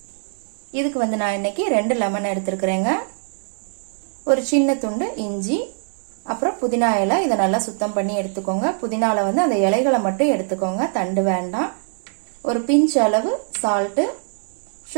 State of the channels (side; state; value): left; silent; 55 dB below the other